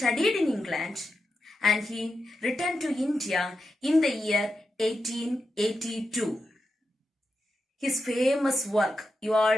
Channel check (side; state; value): both; normal; correlation 0.88